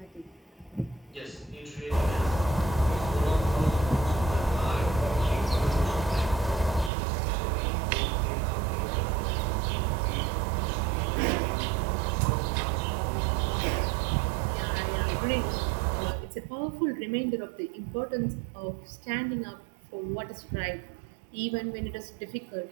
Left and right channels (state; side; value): drops out; left; at 6.9 s